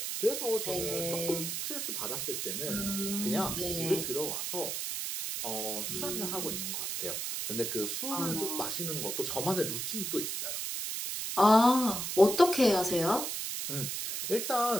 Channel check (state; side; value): noise; right; hiss, 3 dB below the sound